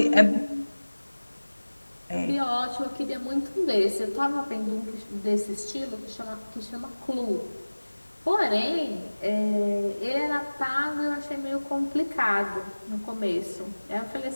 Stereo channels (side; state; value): both; inverted; correlation -1.00